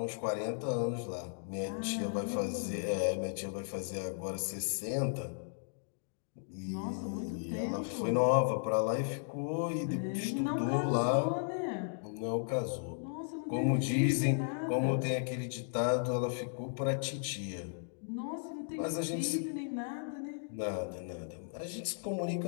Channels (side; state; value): right; silent; digital silence